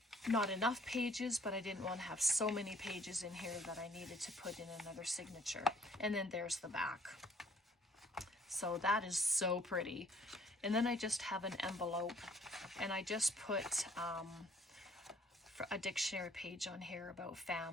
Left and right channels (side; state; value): both; normal; correlation 0.59